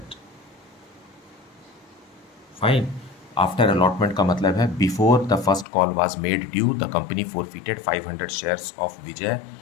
Fine. After allotment का मतलब है before the first call was made due the company forfeited 500 shares of Vijay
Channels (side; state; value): right; drops out; at 5.7 s